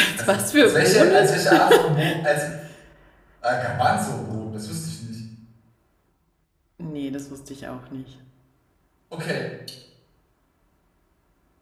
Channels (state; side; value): identical; both; correlation 1.00